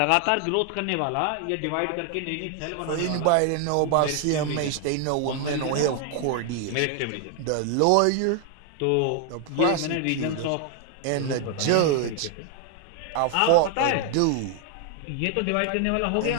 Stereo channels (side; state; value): both; different; correlation 0.00